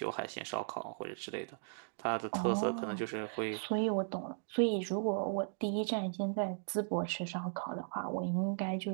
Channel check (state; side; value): silent; left; digital silence